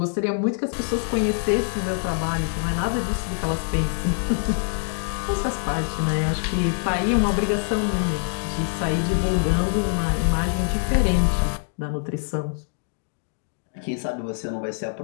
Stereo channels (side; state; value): right; silent; digital silence